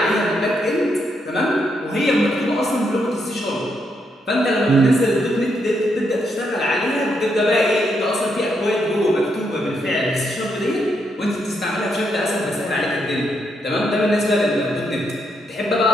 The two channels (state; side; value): normal; both; correlation 0.78